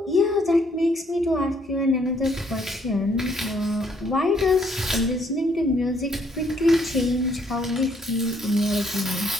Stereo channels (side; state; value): both; normal; correlation 0.67